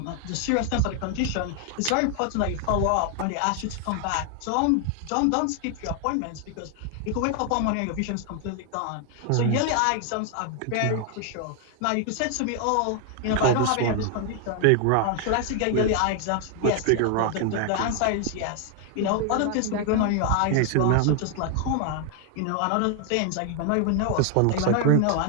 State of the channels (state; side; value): different; both; correlation 0.00